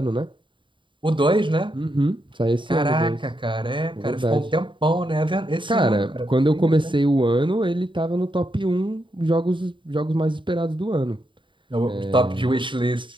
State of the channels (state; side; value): late; left; 0.24 ms